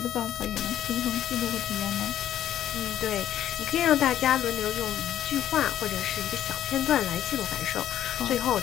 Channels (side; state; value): right; quieter; 11.5 dB